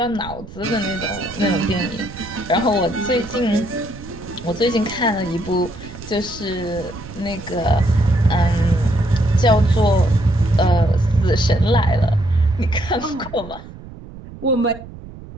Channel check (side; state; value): right; noise; rumble, 15 dB below the sound